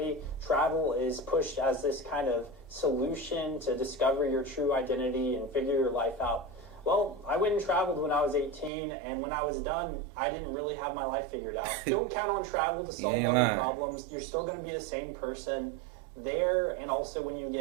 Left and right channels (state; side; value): drops out; left; at 8.7 s